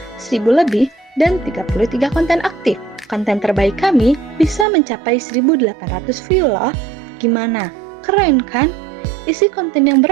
1000 lebih dan 33 konten aktif. Konten terbaik kami bisa mencapai 1800 view loh. Gimana? Keren kan? Isi konten yang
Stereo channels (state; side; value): drops out; left; at 4.7 s